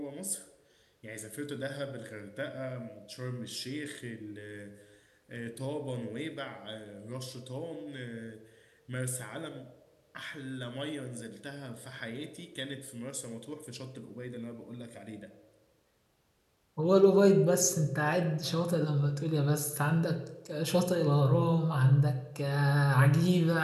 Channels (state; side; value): identical; both; correlation 1.00